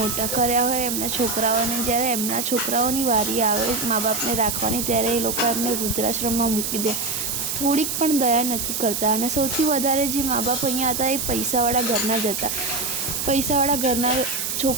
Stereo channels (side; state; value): right; noise; hiss, 2 dB below the sound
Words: કર્યા હોય એમના છોકરાઓને, જ્યારે એમના છોકરાઓની વારી આવે મા બાપને રાખવાની, ત્યારે એ લોકો એમને વૃદ્ધાશ્રમમાં મૂકી દે, થોડીક પણ દયા નથી કરતા। અને સૌથી વધારે જે મા બાપ અહીંયા હતા એ પૈસાવાળા ઘરના જ હતા। પૈસાવાળા ઘરના